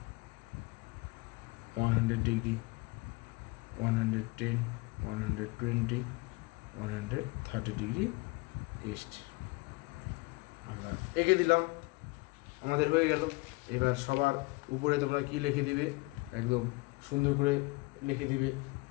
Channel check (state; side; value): quieter; right; 25.0 dB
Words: 100 degree, 110, 120, 130 degree east আমরা এঁকে দিলাম, আমাদের হয়ে গেল। এবার সবার উপরে তোমরা কি লিখে দিবে, একদম সুন্দর করে লিখে দিবে